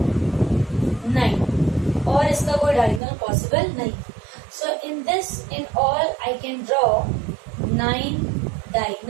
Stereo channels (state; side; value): drops out; left; at 3.0 s